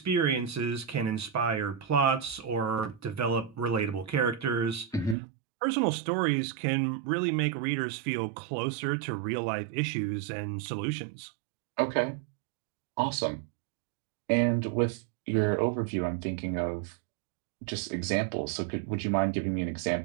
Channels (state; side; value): drops out; left; at 5.2 s